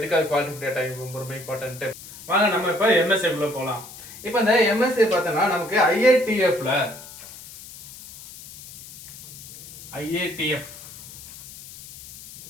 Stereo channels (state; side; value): noise; left; hiss, 16 dB below the sound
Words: குவாலிட்டி ஆஃப் டேட்டா ரொம்ப ரொம்ப இம்பார்ட்டன்ட்டு? வாங்க நம்ம இப்போ எம்எஸ்ஏக்குள்ளே போகலாம். இப்போ இந்த எம்எஸ்ஏ பார்த்தோன்னா நமக்கு IATF